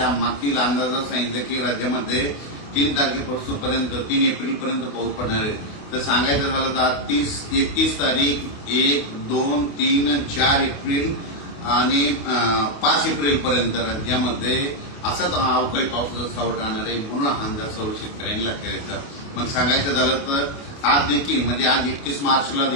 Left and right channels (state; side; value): late; right; 28 ms